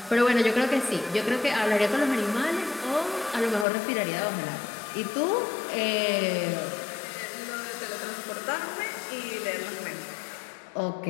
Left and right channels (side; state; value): right; drops out; at 3.7 s